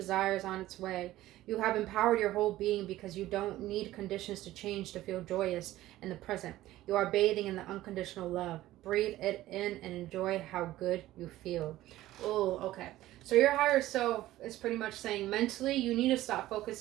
is on its way. You have empowered your whole being because you don't need conditions to change to feel joyous in the present. You are bathing in the unconditional love. Breathe it in and enjoy how good you feel. Oh, okay. So your higher self is pretty much saying mentally you need to stop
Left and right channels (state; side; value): quieter; left; 15.5 dB